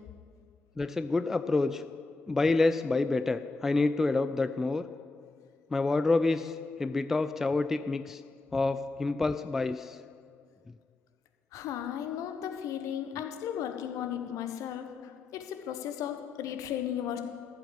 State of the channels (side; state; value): right; quieter; 3.5 dB